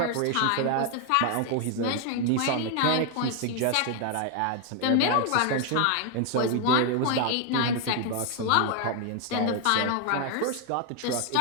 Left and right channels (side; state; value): both; different; correlation 0.01